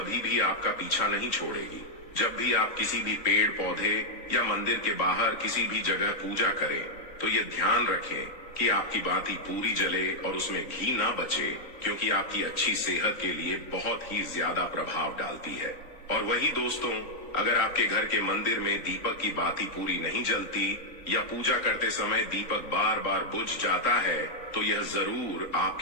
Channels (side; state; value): right; late; 3.9 ms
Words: भी आपका पीछा नहीं छोड़ेगी। जब भी आप किसी भी पेड़ पौधे या मंदिर के बाहर किसी भी जगह पूजा करें, तो ये ध्यान रखें कि आपकी बाती पूरी जले और उसमें घी ना बचे, क्योंकि आपकी अच्छी सेहत के लिए बहुत ही ज्यादा प्रभाव डालती है। और वही दोस्तों, अगर आपके घर के मंदिर में दीपक की बाती पूरी नहीं जलती या पूजा करते समय दीपक बार बार बुझ जाता है, तो यह जरूर